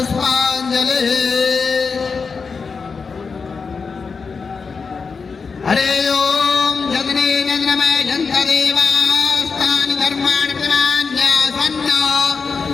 हरे ओम जगने नन्द्रमय जन्तदेवास्तानि धर्माणि प्रमाण्यासन्न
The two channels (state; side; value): quieter; right; 5.1 dB